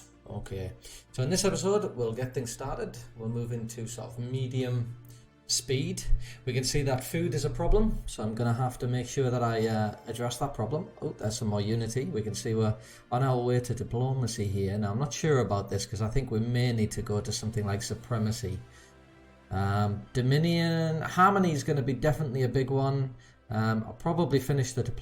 Okay, so in this episode, we'll get things started. We'll move into sort of medium speed. We can see that food is a problem, so I'm going to have to make sure that I address that problem. Oh, there's some more unity. We can see we're on our way to diplomacy here. Now, I'm not sure about this because I think we may need to go to something like supremacy. Dominion, harmony is going to be definitely a big one. I'll probably finish the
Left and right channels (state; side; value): identical; both; correlation 1.00